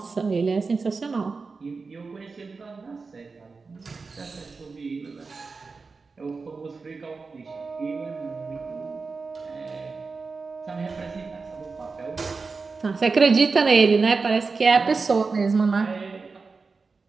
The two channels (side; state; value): left; quieter; 4.4 dB